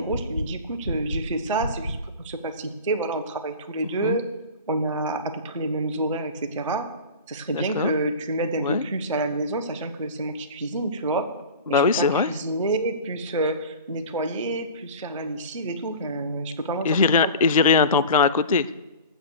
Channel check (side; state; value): both; inverted; correlation -0.35